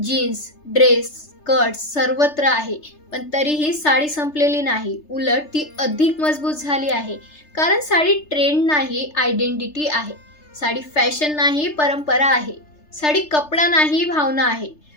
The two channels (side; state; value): right; late; 3.3 ms